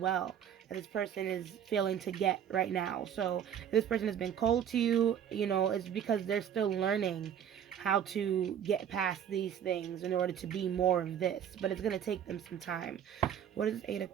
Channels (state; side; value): quieter; left; 9.1 dB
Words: that this person is failing to get right now. So if this person has been cold to you, you know, it's because they're still learning how to get past these things in order to be more of this, but it's going to take them some time. What is 8 of